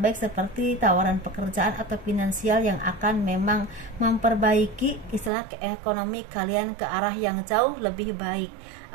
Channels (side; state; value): left; drops out; at 5.3 s